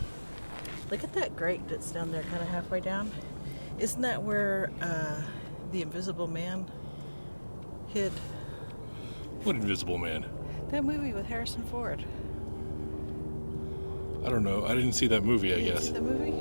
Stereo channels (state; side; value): inverted; both; correlation -1.00